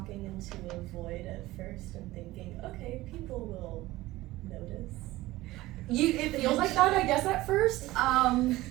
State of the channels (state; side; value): quieter; left; 17.8 dB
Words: into a void at first and thinking, okay, people will notice? It feels like that, I guess, at first.